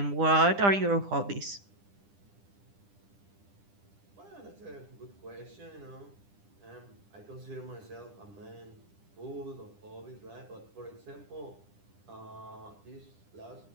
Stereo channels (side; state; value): left; late; 10 ms